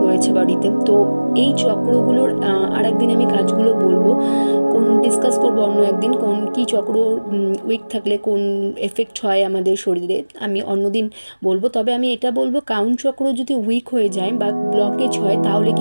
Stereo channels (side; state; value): both; inverted; correlation -1.00